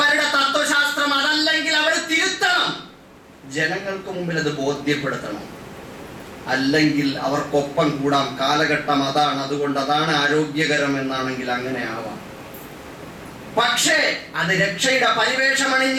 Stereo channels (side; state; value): both; identical; correlation 1.00